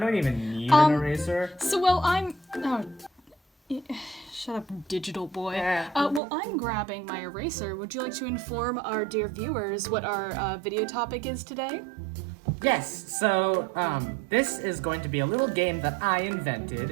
even need an eraser. Shut up, digital boy. Yeah. I'm grabbing my eraser. Would you like to inform our dear viewers what our video topic is today? Yes, so, this is going to be a little game that I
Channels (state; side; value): drops out; left; at 6.2 s